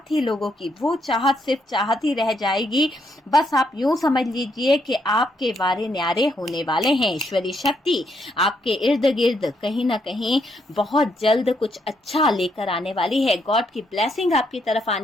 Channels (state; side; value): normal; both; correlation 0.76